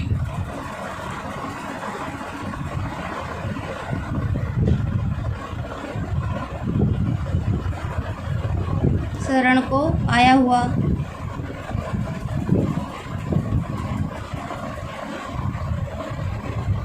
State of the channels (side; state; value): both; identical; correlation 1.00